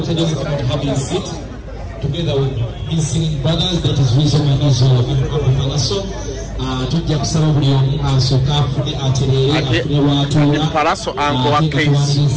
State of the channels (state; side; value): identical; both; correlation 1.00